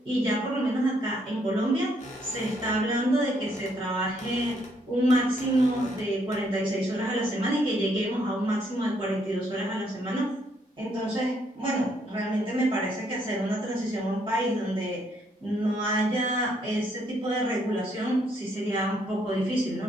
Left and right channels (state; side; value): normal; both; correlation 0.71